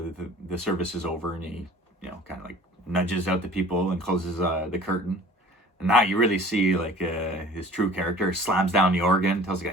service is over, and he kind of like nudges out the people and closes the curtain. And now you really see like his true character. Slams down the organ, tells the guy,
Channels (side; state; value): both; normal; correlation 0.47